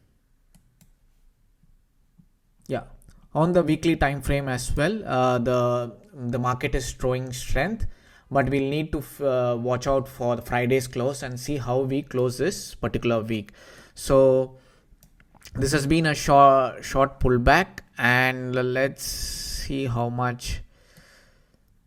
Yeah, on the weekly time frame as well, the market is showing strength, but we'll need to watch out for the Friday's close and see how we close this particular week. So this has been a short pullback, and let's see how much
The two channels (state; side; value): identical; both; correlation 1.00